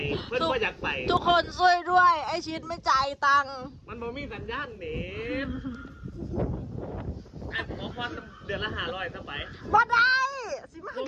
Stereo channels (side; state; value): both; identical; correlation 1.00